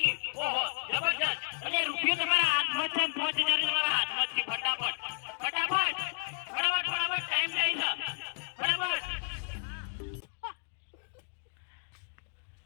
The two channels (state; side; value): silent; right; digital silence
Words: ઓહો જબરજસ્ત. અરે રૂપિયો તમારા હાથમાં છે 5000 તમારા હાથમાં છે. ફટાફટ ટાઈમ થઈ છે